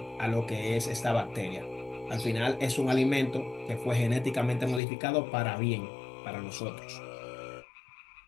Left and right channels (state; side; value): drops out; right; at 4.8 s